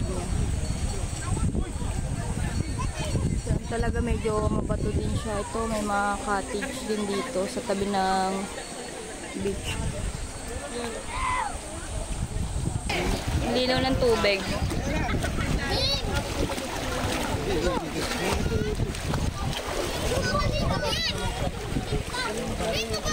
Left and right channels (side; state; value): both; identical; correlation 1.00